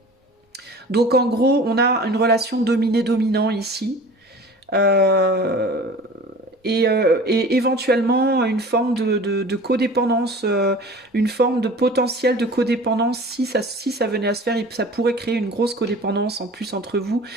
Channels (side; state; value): both; normal; correlation 0.42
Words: ? Donc en gros, on a une relation dominé-dominant ici. Et éventuellement une forme de codépendance, une forme de potentiel de codépendance. Si ça venait à se faire, ça pourrait créer une grosse codépendance en plus entre vous.